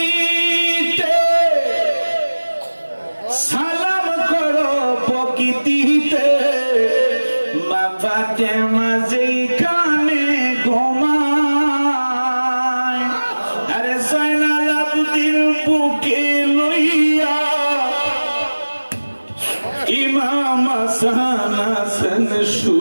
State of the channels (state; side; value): inverted; both; correlation -1.00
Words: সালাম করো প্রকৃতিতে, মা ফাতেমা যেখানে ঘুমায়, আরে জয়নাল আবদিন বুকে লইয়া ইমাম হাসান হাসান